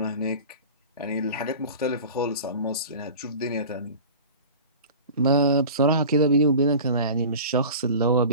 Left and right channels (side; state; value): both; inverted; correlation -0.38